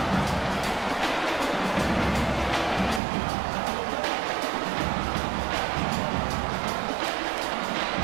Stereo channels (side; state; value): left; drops out; at 3.0 s